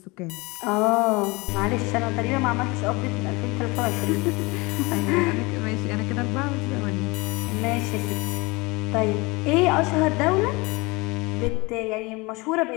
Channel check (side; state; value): right; quieter; 24.9 dB